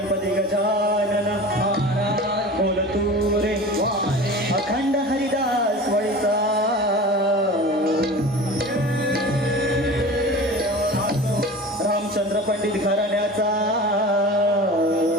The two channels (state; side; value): normal; both; correlation 0.36